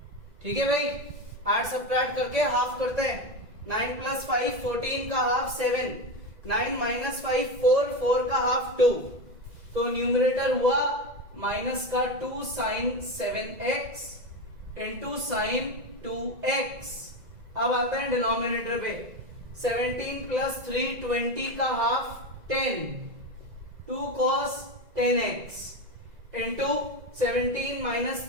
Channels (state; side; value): late; left; 2.0 ms